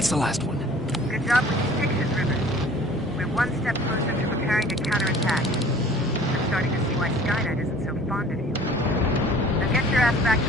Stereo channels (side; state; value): both; normal; correlation 0.49